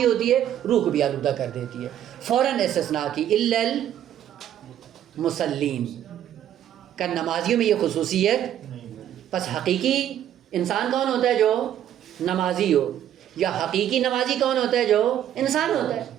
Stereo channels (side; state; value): left; quieter; 10.9 dB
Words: ہوتی ہے روح کو بھی آلودہ کر دیتی ہے. فوراً استثناء کی الا المصلین کا نمازیوں میں یہ خصوصیت. پس حقیقی انسان کون ہوتا ہے؟ جو نمازی ہو. یا حقیقی نمازی کون ہوتا ہے؟ جو انسان ہوتا ہے.